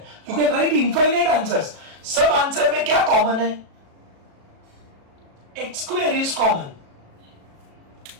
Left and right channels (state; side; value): late; left; 37 ms